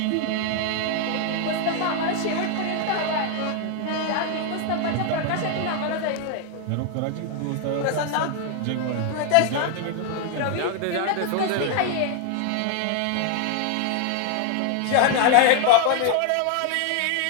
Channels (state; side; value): different; both; correlation 0.00